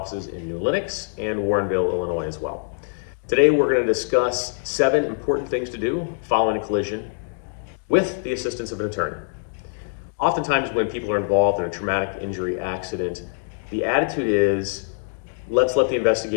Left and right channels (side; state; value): right; silent; digital silence